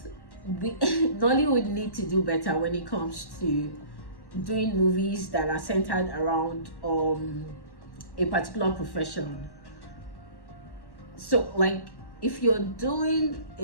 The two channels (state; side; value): late; right; 1.1 ms